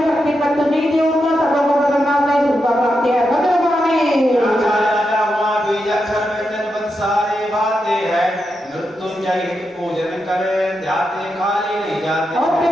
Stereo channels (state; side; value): normal; both; correlation 0.86